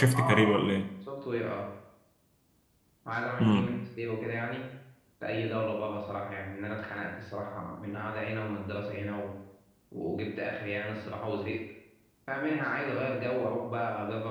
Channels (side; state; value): both; identical; correlation 1.00